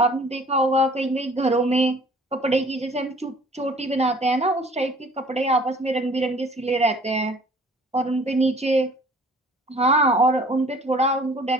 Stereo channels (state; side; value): normal; both; correlation 0.52